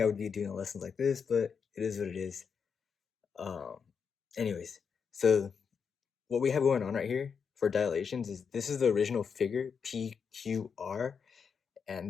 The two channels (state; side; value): quieter; right; 6.3 dB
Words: I would be doing lessons like this, but it is what it is. Um, anyways, so what we have going on right here for dilations is this is the original figure, PQR, and